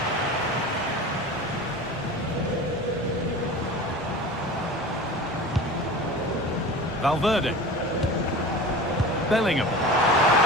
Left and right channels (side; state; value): both; normal; correlation 0.35